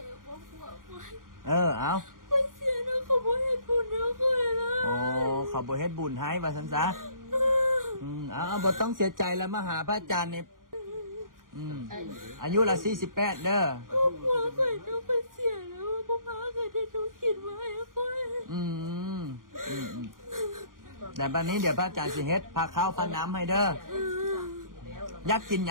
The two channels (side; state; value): left; late; 0.90 ms